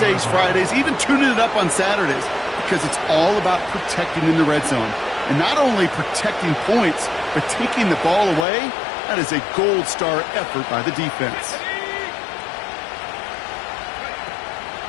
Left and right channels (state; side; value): drops out; right; at 8.5 s